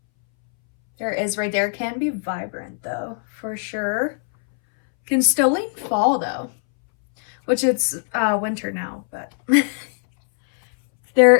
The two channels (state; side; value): silent; right; 64 dB below the other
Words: There it is right there. It can be vibrant though, for sure. Can still lean fall though, which it's winter now, but there